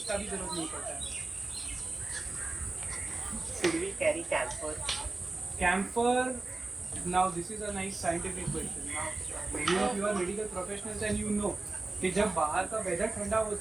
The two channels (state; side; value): quieter; left; 3.3 dB